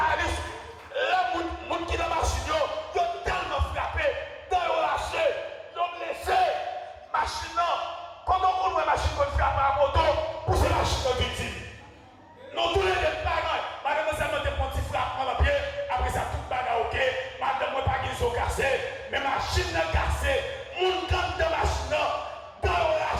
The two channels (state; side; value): identical; both; correlation 1.00